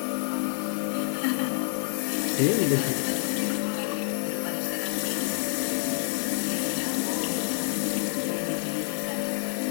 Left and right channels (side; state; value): right; silent; digital silence